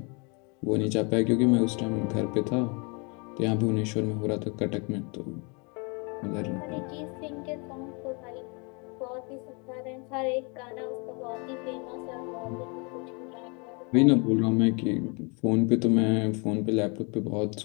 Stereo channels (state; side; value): quieter; right; 32.7 dB